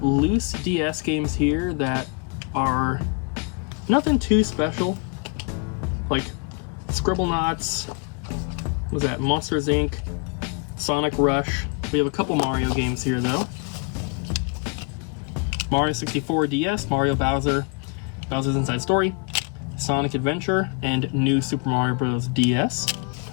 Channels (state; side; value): quieter; right; 33.2 dB